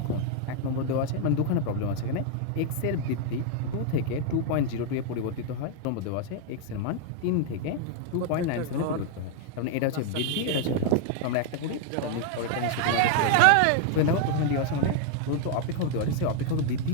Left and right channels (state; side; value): different; both; correlation 0.00